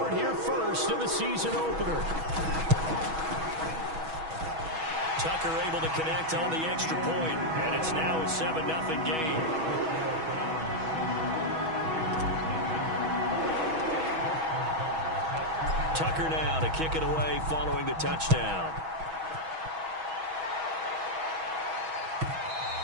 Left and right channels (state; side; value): late; left; 6.2 ms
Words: here first in the season opener. Tucker able to connect on the extra point, and it's now a 7-0 game. Tucker now to kick it away following the touchdown.